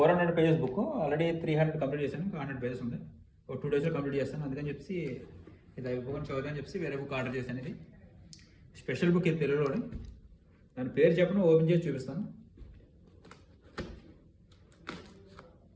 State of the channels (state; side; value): identical; both; correlation 1.00